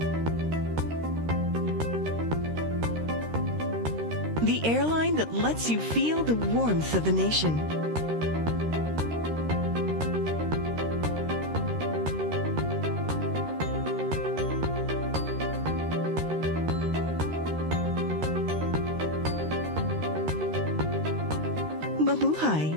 The airline that lets you feel the warmth of the nation. Mabuhay!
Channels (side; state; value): left; late; 13 ms